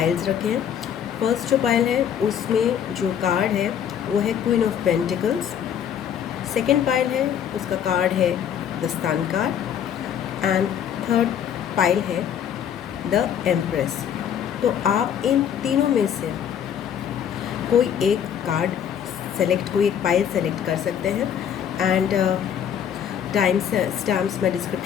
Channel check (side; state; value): right; quieter; 8.9 dB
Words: रखे हैं। फर्स्ट जो पाइल है उसमें जो कार्ड है वो है queen of pentacles. Second pile है उसका कार्ड है the sun card and third pile है द एम्प्रेस। तो आप इन तीनों में से कोई एक कार्ड सेलेक्ट, कोई एक पाइल सेलेक्ट कर सकते हैं एंड स्टैम्प्स मैं